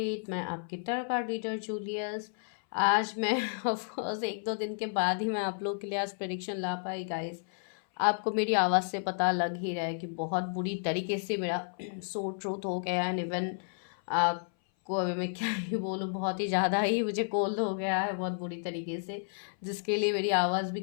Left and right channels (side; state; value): right; silent; 57 dB below the other